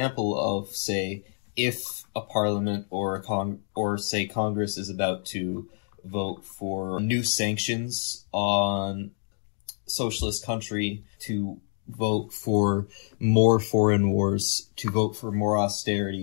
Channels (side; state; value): right; silent; digital silence